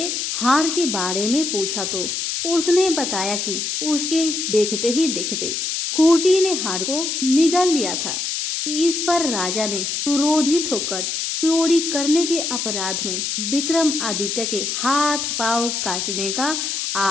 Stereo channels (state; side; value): noise; left; hiss, 2 dB below the sound